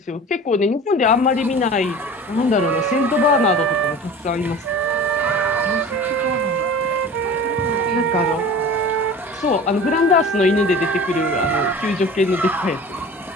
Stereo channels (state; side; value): normal; both; correlation 0.39